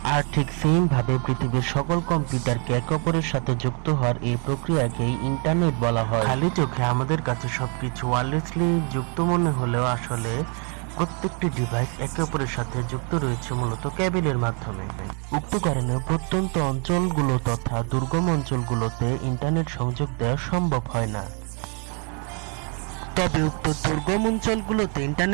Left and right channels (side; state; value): left; quieter; 37.2 dB